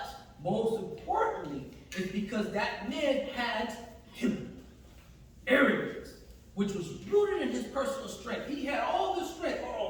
most importantly, is because that man had arrogance, which was rooted in his personal strength. He had all this strength.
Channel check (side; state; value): both; identical; correlation 1.00